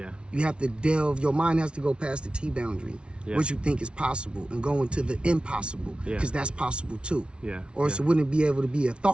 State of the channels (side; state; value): left; late; 0.058 ms